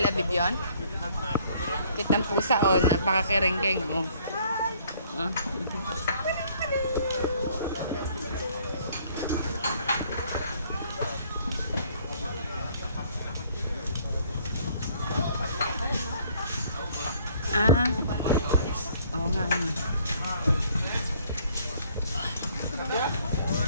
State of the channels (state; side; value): inverted; both; correlation -0.60